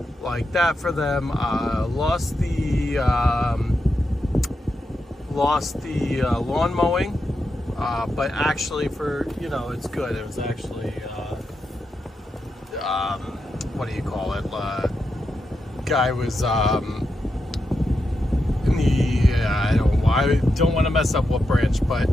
like that for them. Lost the lawn mowing, but actually, for it's good. It was actually what do you call it? Guy was in the I don't want to mess up what branch, but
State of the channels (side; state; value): both; normal; correlation 0.86